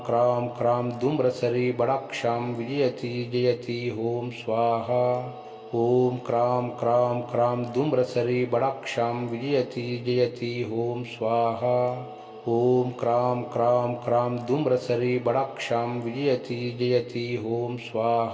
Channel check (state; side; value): identical; both; correlation 1.00